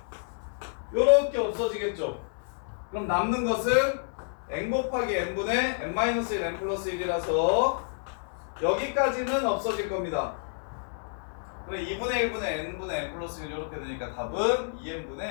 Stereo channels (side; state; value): right; silent; 58 dB below the other